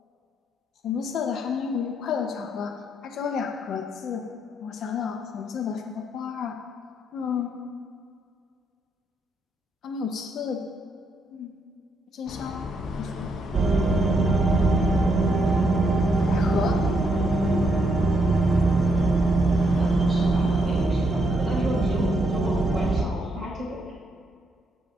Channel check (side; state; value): both; normal; correlation 0.76